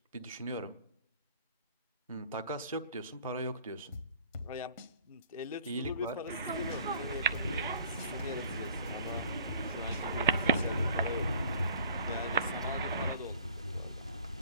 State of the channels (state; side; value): inverted; both; correlation -0.51